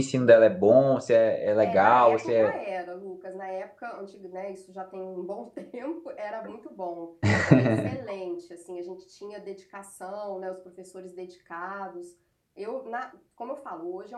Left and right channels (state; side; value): identical; both; correlation 1.00